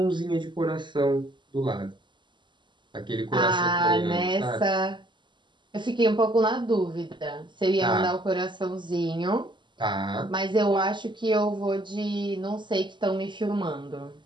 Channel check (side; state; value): left; late; 0.22 ms